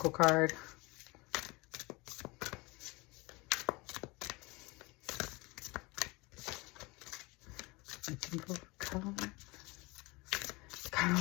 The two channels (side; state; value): right; quieter; 24.7 dB